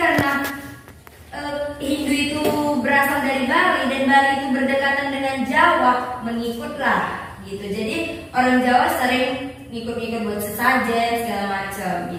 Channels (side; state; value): both; identical; correlation 1.00